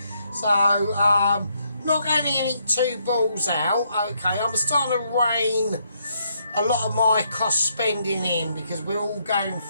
So, not going to get two balls out. Okay, I'm starting to rein a lot of my cost spending in because we're all going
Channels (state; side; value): inverted; both; correlation -0.74